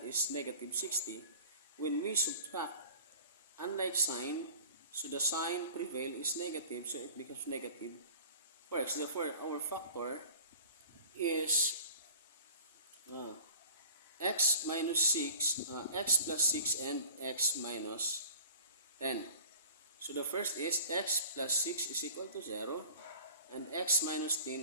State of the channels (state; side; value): inverted; both; correlation -0.42